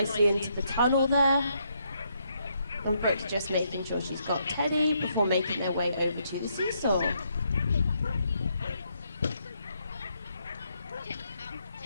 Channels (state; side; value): inverted; both; correlation -0.75